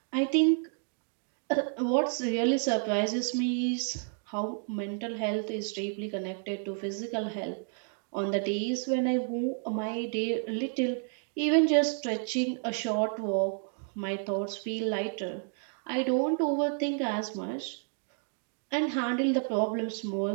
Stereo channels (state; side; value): silent; left; 57 dB below the other